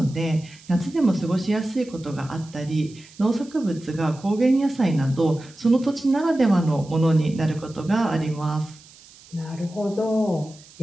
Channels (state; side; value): noise; right; hiss, 23 dB below the sound